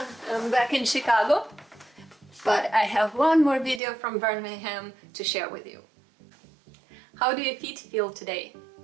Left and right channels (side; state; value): left; drops out; at 3.8 s